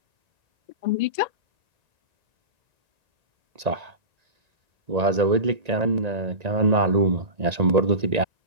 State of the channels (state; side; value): late; left; 1.9 ms